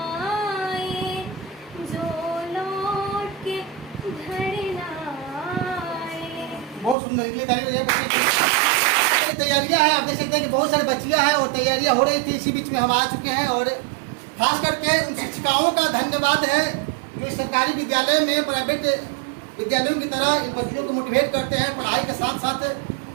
आए, जो लौट के घर ना आए। बहुत सुंदर तैयारियां हैं, आप देख सकते हैं कि बहुत सारी बच्चियां हैं और तैयारियां हो रही थी। इसी बीच में हम आ चुके हैं और खास करके उन शिक्षिकाओं का धन्यवाद है जो सरकारी विद्यालय में प्राइवेट विद्यालयों की तरह इन बच्चियों को मोटिवेट करते हैं, पढ़ाई के साथ साथ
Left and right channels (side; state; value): left; drops out; at 7.0 s